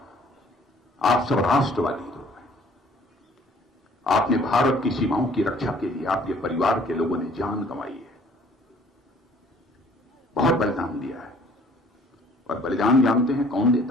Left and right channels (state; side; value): normal; both; correlation 0.56